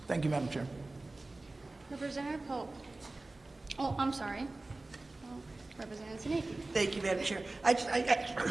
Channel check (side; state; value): left; quieter; 3.1 dB